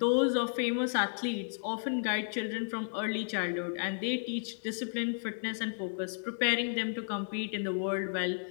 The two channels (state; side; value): silent; right; digital silence